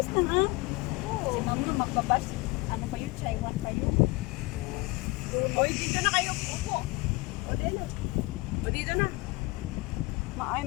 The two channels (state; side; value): quieter; right; 23.4 dB